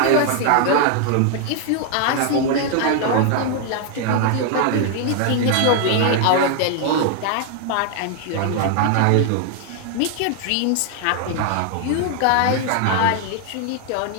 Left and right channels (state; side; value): different; both; correlation 0.00